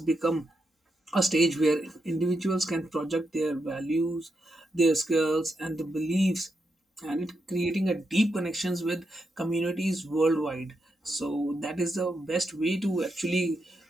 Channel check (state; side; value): normal; both; correlation 0.84